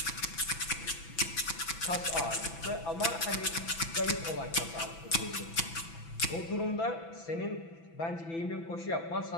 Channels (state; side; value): late; right; 6.0 ms